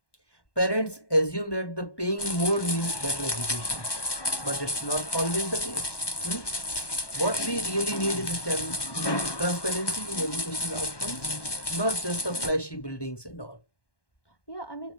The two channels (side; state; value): right; late; 1.2 ms